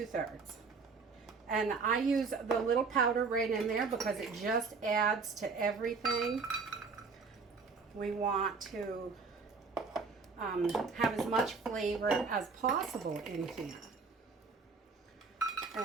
And I use the little powder right in there because it just adds to everything. We want to have as much flavor as possible in here.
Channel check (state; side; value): quieter; left; 4.7 dB